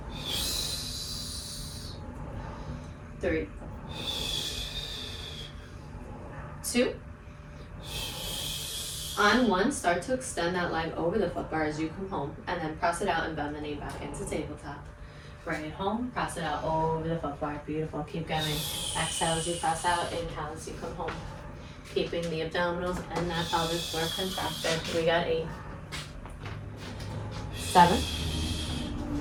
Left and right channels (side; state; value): both; identical; correlation 1.00